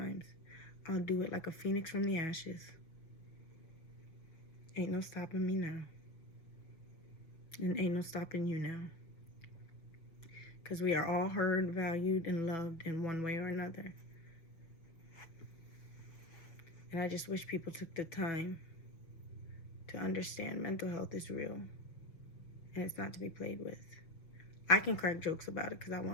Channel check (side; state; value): right; late; 6.3 ms